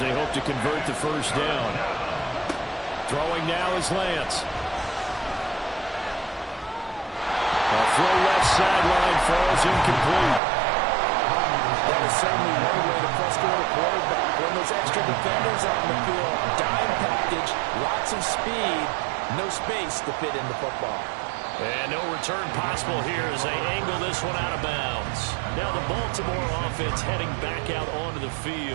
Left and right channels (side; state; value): left; drops out; at 10.4 s